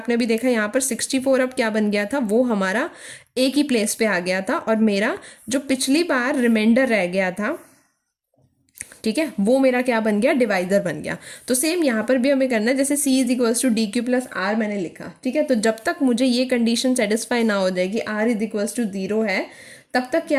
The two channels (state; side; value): identical; both; correlation 1.00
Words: अभी देखा यहाँ पर 64 अब क्या बन गया था, वो हमारा एक ही प्लेस पे आ गया था और मेरा जो पिछली बार रिमाइंडर रह गया था, ठीक है, वो मेरा क्या बन गया, डिवाइजर बन गया। तो सेम यहाँ पर भी हमें करना है, जैसे c is equals to D Q plus R मैंने लिखा, ठीक है। तो जब तक मुझे ये कंडीशन सेटिस्फाई ना हो जाए कि r इज इक्वल्स टू 0 है, तब तक